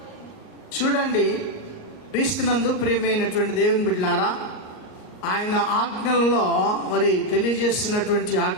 చూడండి, క్రీస్తునందు ప్రియమైనటువంటి దేవుని బిడ్డలారా, ఆయన ఆజ్ఞలలో మరి తెలియజేస్తున్నటువంటి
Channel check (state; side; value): late; right; 38 ms